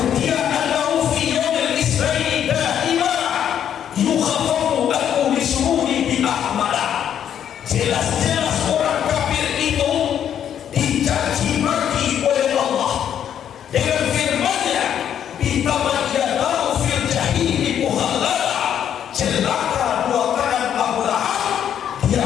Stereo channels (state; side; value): quieter; right; 9.4 dB